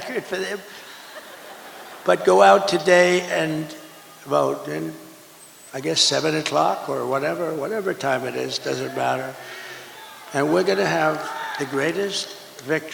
for them. But go out today and vote. And I guess 7 o'clock or whatever time it is, doesn't matter. And we're going to have the greatest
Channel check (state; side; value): identical; both; correlation 1.00